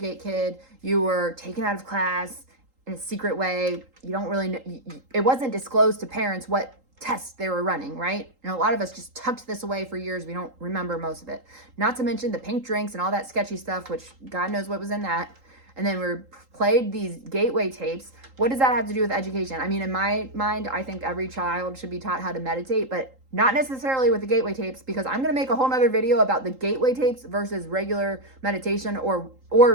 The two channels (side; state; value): left; late; 3.8 ms